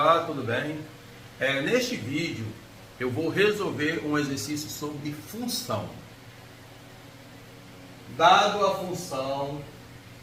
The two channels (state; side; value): identical; both; correlation 1.00